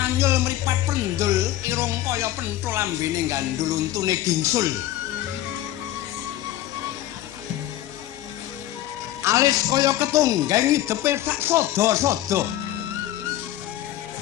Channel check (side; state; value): right; quieter; 13.9 dB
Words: mripat pendul irung kaya penthul lambene gandul untune gingsul. Alis kaya ketunggang hidepe sak sada-sada.